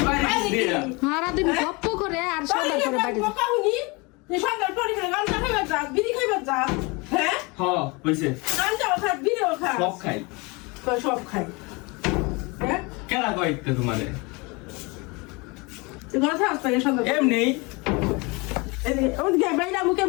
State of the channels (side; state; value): right; quieter; 27.2 dB